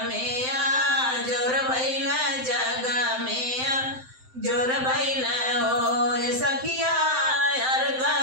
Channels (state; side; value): late; left; 7.8 ms